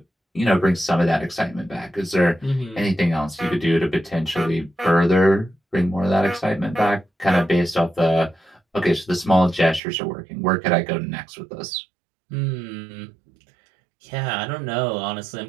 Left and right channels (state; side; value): drops out; left; at 9.8 s